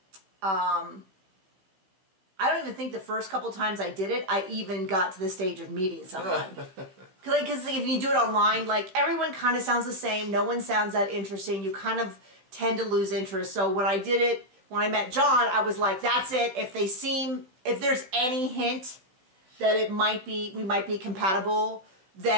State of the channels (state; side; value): late; left; 16 ms